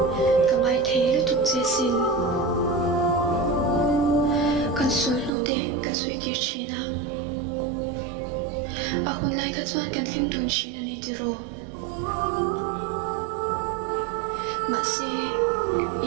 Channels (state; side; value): drops out; left; at 5.3 s